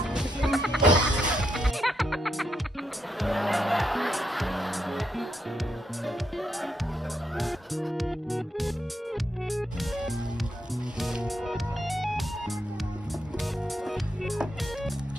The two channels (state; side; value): normal; both; correlation 0.80